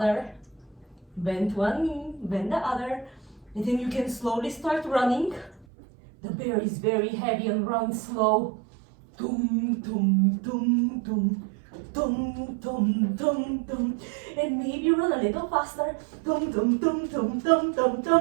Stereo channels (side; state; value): left; drops out; at 5.7 s